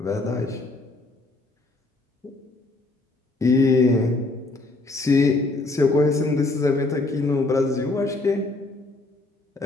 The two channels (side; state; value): right; quieter; 3.1 dB